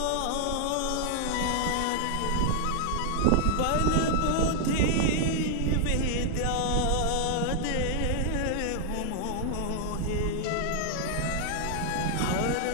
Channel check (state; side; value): different; both; correlation 0.00